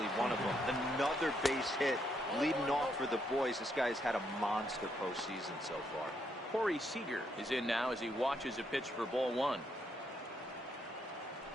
one of them. Another base hit leading off for the boys. This guy's had a monster postseason so far. Corey Seager is in now as he watches a pitch for ball one.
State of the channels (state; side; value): normal; both; correlation 0.76